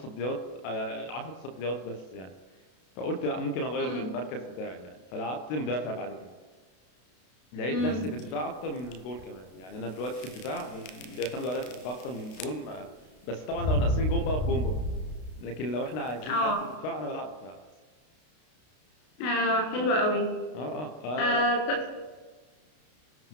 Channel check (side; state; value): right; late; 32 ms